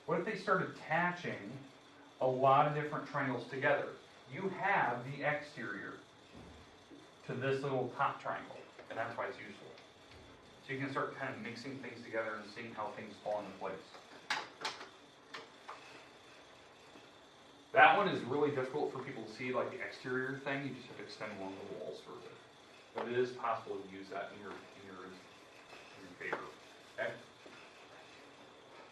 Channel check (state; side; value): identical; both; correlation 1.00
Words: What if they start attaching a lot of different triangles together? You have the exterior to this little top triangle, and that's why it's useful. So you can start kind of mixing things together and seeing how things fall into place. That one is really difficult for people to see, like the exterior thing. You just have to extend along the walls for it. But it is possible to use that in your favor. Okay?